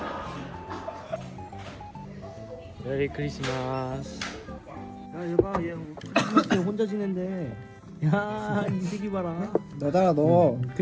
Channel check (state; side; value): identical; both; correlation 1.00